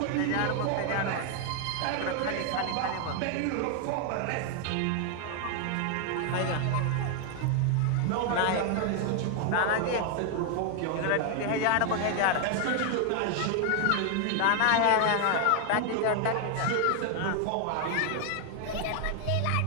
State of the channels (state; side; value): different; both; correlation 0.00